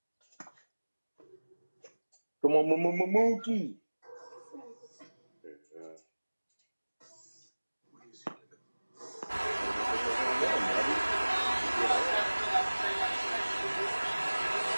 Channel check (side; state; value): both; inverted; correlation -1.00